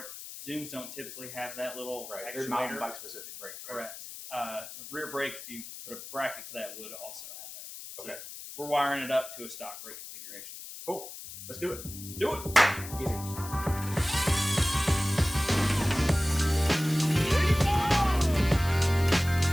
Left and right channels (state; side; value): noise; left; hiss, 12 dB below the sound